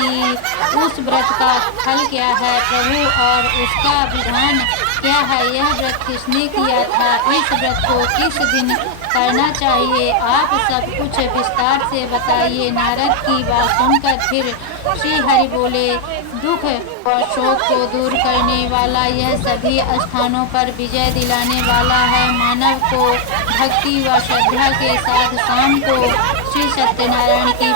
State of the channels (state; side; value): different; both; correlation 0.00